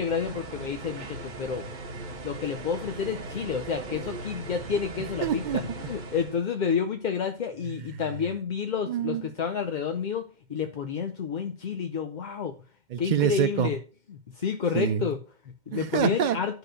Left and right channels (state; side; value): late; left; 2.1 ms